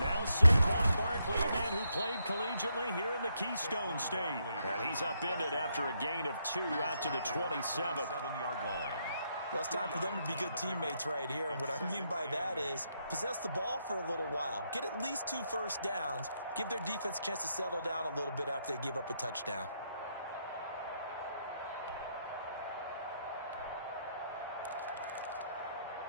Saquon Barkley, a man who played collegiately here in the Keystone State. And he's upended after a gain of 2 out to the 27th. 7-yard line. Well, it's time for them to be good teammates right here. And what I mean by that is possess the ball for a little while. Get at least 2 first downs. Give their defense a chance to settle down a little bit after they give up a touchdown.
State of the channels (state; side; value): inverted; both; correlation -0.78